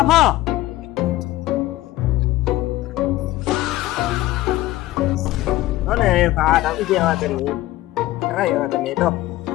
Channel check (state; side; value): quieter; right; 16.6 dB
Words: apa? Nó này phá đóng cái gì mà cái này. Cái này cái này đâu.